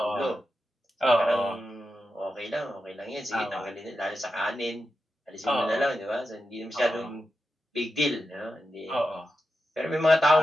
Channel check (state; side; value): normal; both; correlation 0.89